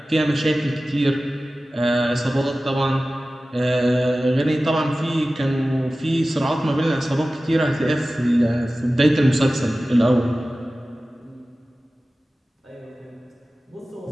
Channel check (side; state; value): both; normal; correlation 0.96